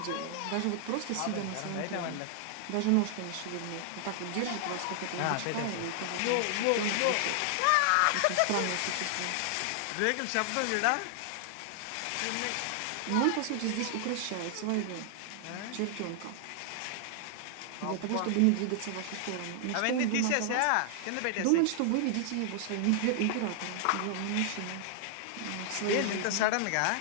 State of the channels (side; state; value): both; different; correlation 0.00